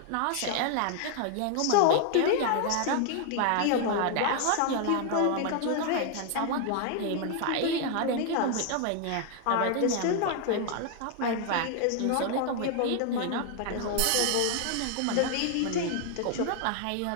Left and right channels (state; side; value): different; both; correlation 0.00